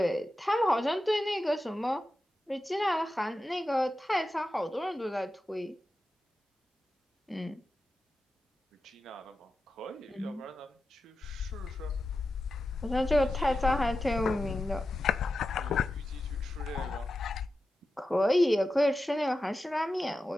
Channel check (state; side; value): normal; both; correlation 0.91